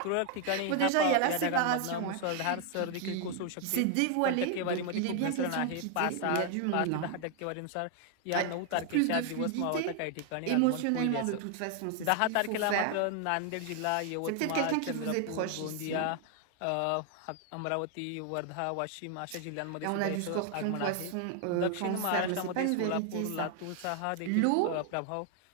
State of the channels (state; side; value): different; both; correlation 0.00